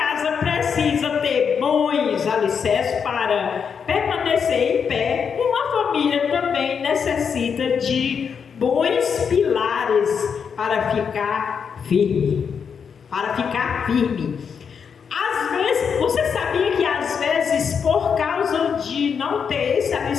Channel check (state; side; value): quieter; right; 6.6 dB